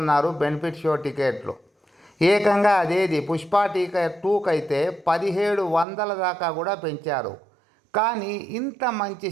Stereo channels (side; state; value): left; drops out; at 5.9 s